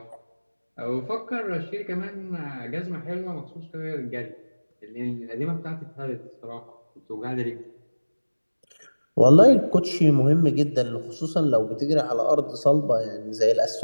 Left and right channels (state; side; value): inverted; both; correlation -1.00